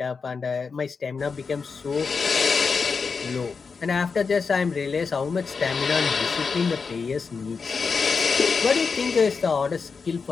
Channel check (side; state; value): right; quieter; 5.1 dB